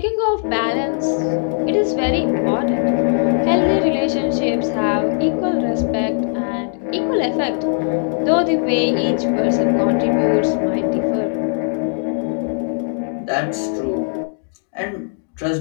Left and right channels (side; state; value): right; silent; digital silence